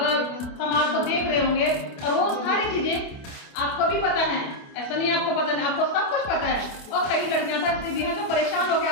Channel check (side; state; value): right; late; 28 ms